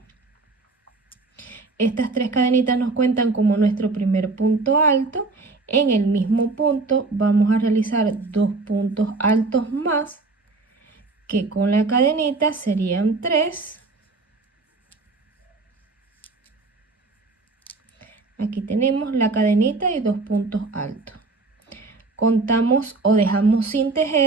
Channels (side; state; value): left; quieter; 3.7 dB